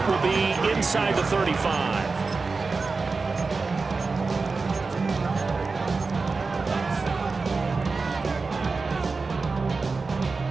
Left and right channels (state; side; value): quieter; left; 4.2 dB